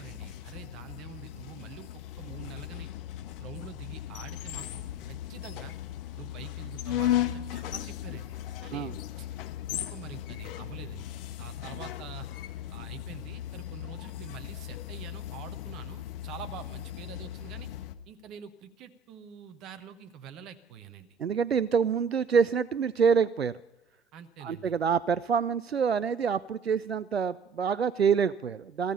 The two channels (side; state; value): left; quieter; 3.0 dB